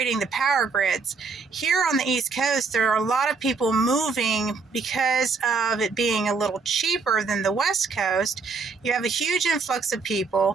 the power grids. Here on the East Coast, there are a lot of people moving because of it being a little cheaper than the West Coast. You have a huge influx of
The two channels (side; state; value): left; quieter; 4.7 dB